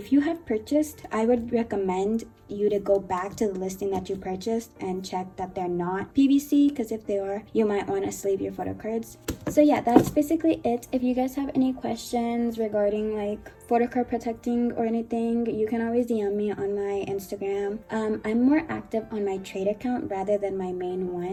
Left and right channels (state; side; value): identical; both; correlation 1.00